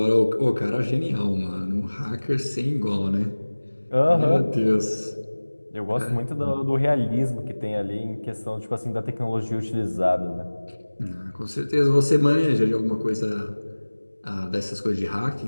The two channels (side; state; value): both; inverted; correlation -1.00